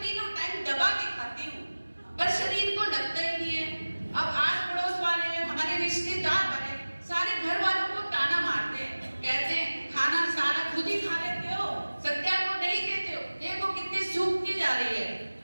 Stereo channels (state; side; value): inverted; both; correlation -1.00